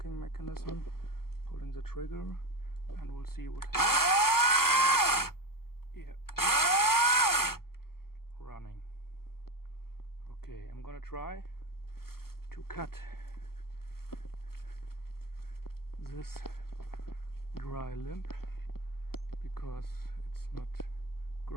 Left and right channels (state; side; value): late; right; 0.93 ms